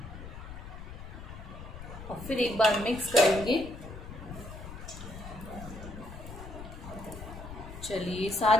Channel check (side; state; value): left; noise; rumble, 12 dB below the sound